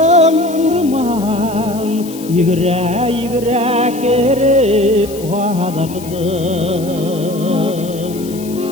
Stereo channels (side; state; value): left; noise; hiss, 17 dB below the sound